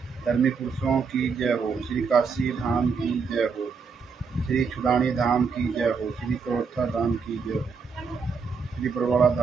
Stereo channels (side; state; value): left; quieter; 5.3 dB